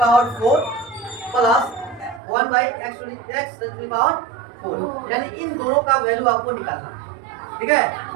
4 plus 1/x to the power 4, यानी इन दोनों का वैल्यू आपको निकालना है। ठीक है,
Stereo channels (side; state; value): left; drops out; at 2.2 s